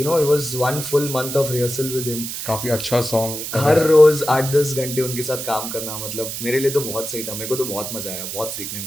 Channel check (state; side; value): noise; right; hiss, 6 dB below the sound